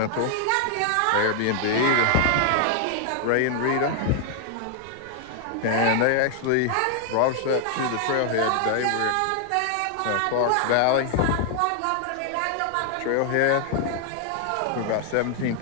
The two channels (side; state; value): both; different; correlation 0.00